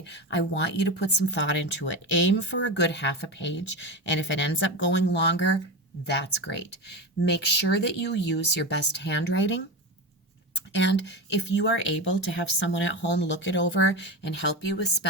I want you to put some thought into it. Aim for a good half a page, and if it ends up going longer, that's great. Make sure that you use your best handwriting. And if you are able to have someone at home look it over and help you with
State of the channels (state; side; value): normal; both; correlation 0.22